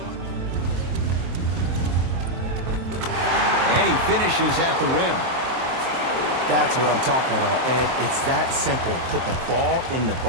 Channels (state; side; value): late; left; 23 ms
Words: And he finishes at the rim. That's what I'm talking about, Ed. It's that simple. Put the ball in the